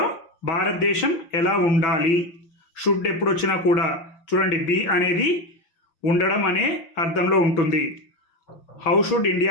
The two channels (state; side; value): late; right; 6.1 ms